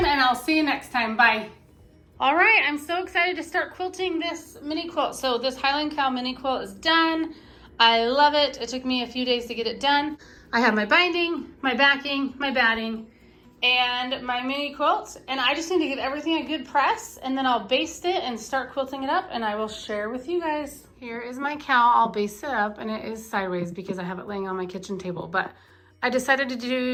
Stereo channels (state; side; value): identical; both; correlation 1.00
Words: and I'll see you next time. Bye. All right, I'm so excited to start quilting this mini quilt. So this Highland cowl mini quilt is done. I love it. It took me a few days to get it done. I have my binding, my backing, my batting, and my mini quilt, and I just need to give everything a good press, and then I'll baste it and start quilting it up, and I will share with you guys. Here is my cowl. I'll baste it up, and it is sideways because I have it laying on my kitchen table, but I decided to